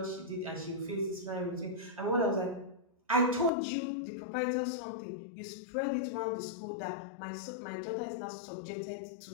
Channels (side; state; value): right; drops out; at 3.5 s